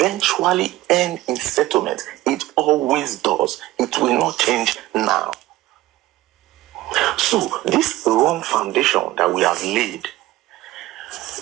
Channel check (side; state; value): left; quieter; 16.8 dB